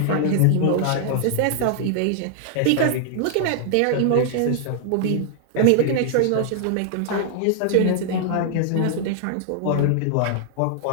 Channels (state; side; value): different; both; correlation -0.01